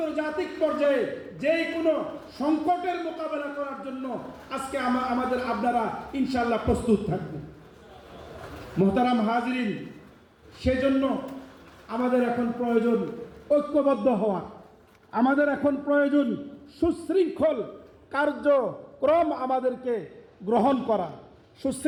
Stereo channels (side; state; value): both; identical; correlation 1.00